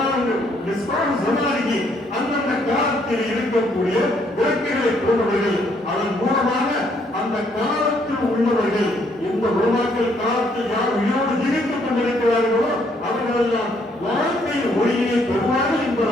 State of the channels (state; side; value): normal; both; correlation 0.69